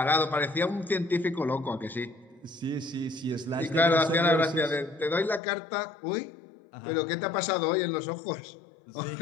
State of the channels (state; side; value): drops out; right; at 5.4 s